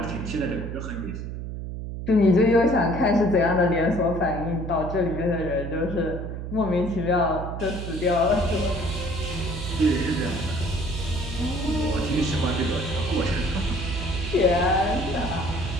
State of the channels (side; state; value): right; noise; hum, 6 dB below the sound